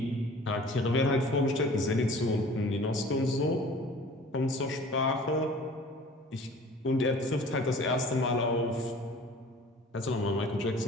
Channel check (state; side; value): normal; both; correlation 0.47